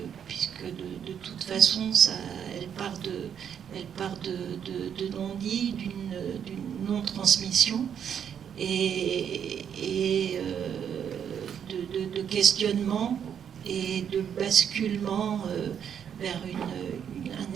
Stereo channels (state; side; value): quieter; left; 8.3 dB